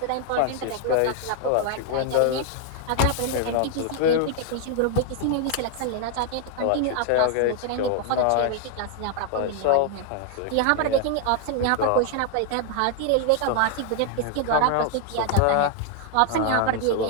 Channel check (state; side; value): different; both; correlation 0.00